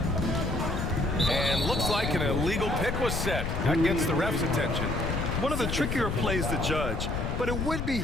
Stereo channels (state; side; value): noise; left; rumble, 2 dB below the sound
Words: And looks like an illegal pick was set. That gets the ref's attention. One of the trickier plays to judge, but it would be